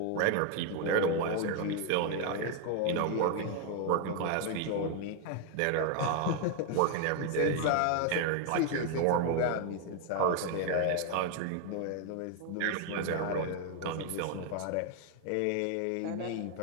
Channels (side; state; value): both; different; correlation 0.01